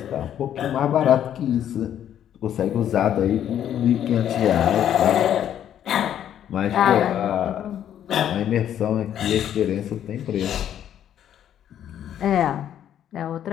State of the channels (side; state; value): right; quieter; 10.3 dB